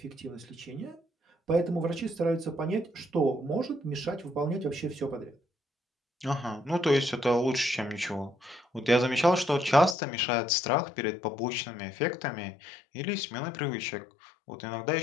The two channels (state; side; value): drops out; right; at 10.0 s